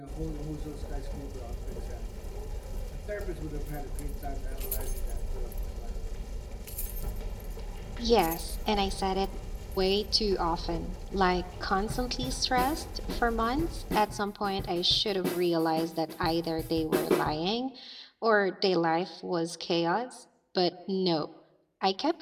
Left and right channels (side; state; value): both; identical; correlation 1.00